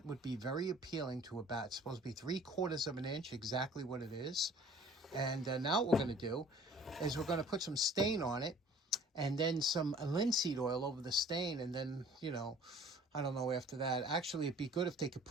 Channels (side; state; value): both; normal; correlation 0.51